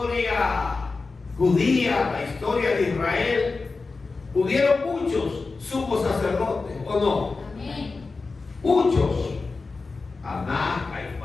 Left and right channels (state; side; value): quieter; right; 4.0 dB